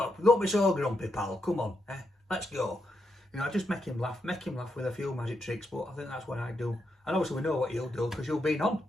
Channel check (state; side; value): normal; both; correlation 0.83